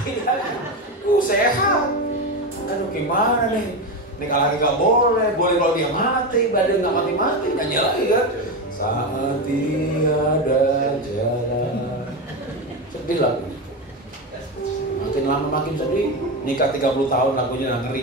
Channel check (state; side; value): normal; both; correlation 0.16